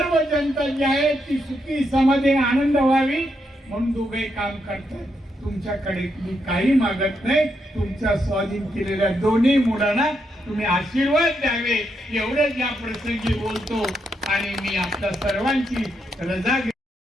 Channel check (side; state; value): both; normal; correlation 0.80